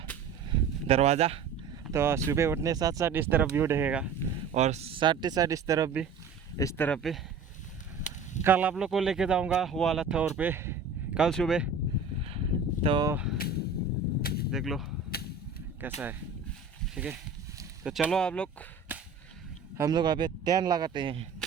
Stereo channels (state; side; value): quieter; left; 5.1 dB